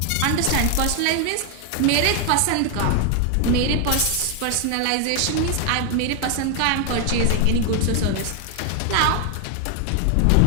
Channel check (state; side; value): different; both; correlation 0.00